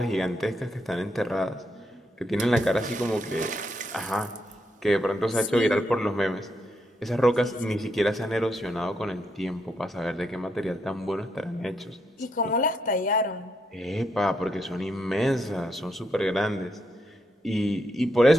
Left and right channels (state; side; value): normal; both; correlation 0.79